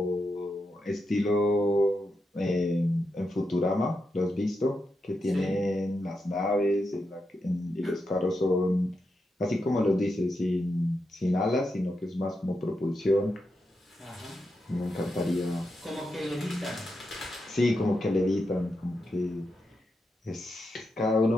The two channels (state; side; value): normal; both; correlation 0.86